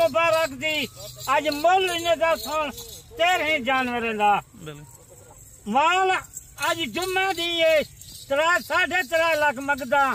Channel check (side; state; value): both; identical; correlation 1.00